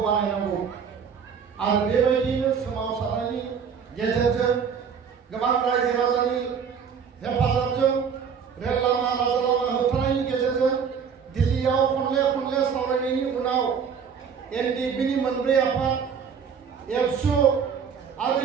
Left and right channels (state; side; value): quieter; left; 6.7 dB